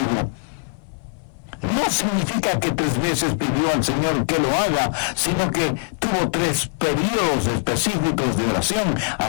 No significa que 3 veces pidió al Señor que lo haga, sino que tuvo 3 periodos específicos de oración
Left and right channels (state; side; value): silent; right; 58 dB below the other